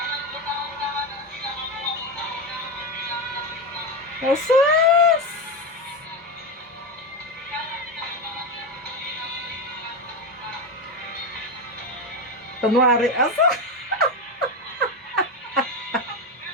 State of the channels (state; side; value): normal; both; correlation 0.14